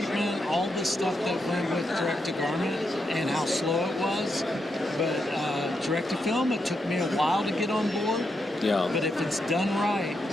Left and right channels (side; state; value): both; normal; correlation 0.83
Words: all the stuff that went with direct to garment and how slow it was. But direct to film, it took me a while to get on board. Yeah. But if it's done right,